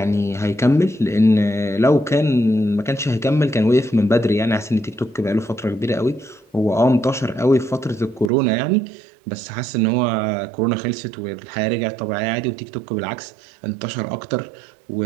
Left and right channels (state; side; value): drops out; left; at 8.3 s